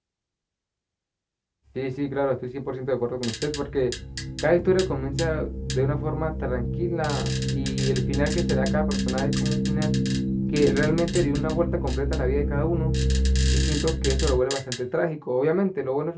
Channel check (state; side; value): identical; both; correlation 1.00